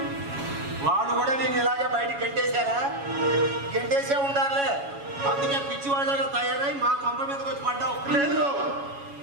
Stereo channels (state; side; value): late; left; 7.2 ms